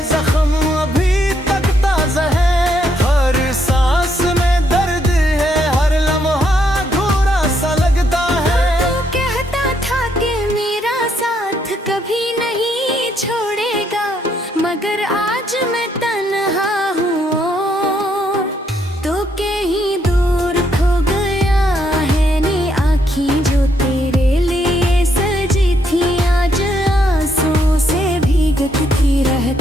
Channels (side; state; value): both; normal; correlation 0.74